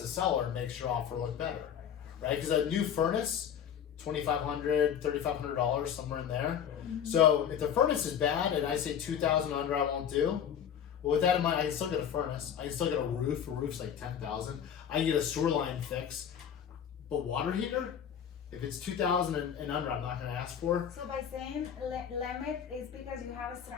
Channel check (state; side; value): quieter; right; 8.5 dB